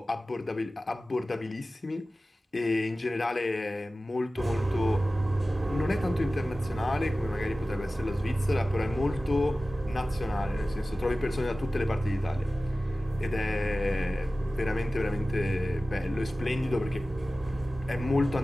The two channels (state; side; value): normal; both; correlation 0.96